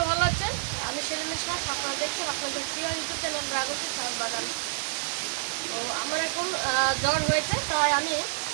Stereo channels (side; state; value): left; silent; digital silence